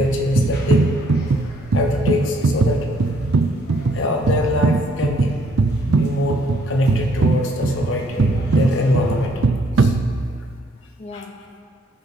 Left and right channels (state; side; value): normal; both; correlation 0.66